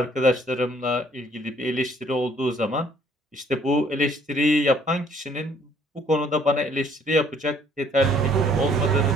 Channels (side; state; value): both; normal; correlation 0.61